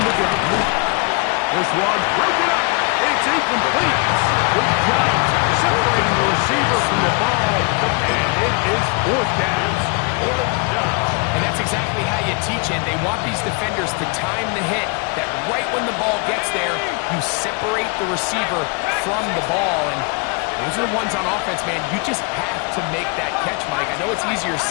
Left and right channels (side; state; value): right; quieter; 32.1 dB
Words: the gun. This one broken up. It's incomplete. Good job separating the receiver from the ball. And it is 4th down. And that's exactly how you teach it. They want these defenders to time the hit, that right when the ball gets there, you separate the receiver from the ball. And those are the ones on offense, man. You just have to make that catch, Mike. I know it's easier